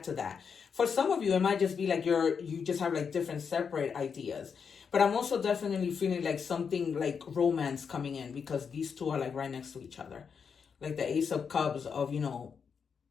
to that. For some of you, it might just be like you just have like different separate ideas. But I'm also definitely feeling like something like romance coming in, because these 2 are like right next to each other. Like the Ace of Cups of,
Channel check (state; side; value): quieter; right; 6.3 dB